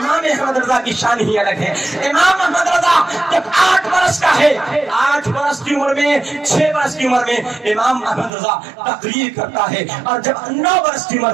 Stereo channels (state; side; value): drops out; left; at 8.3 s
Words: احمد رضا کی شان ہی الگ ہے۔ امام احمد رضا جب 8 برس کا ہے، 8 برس کی عمر میں، 6 برس کی عمر میں امام احمد رضا تقریر کرتا ہے، اور جب 9 برس کی عمر